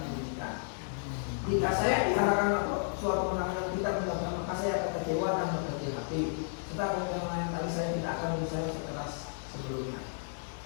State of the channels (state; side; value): silent; right; digital silence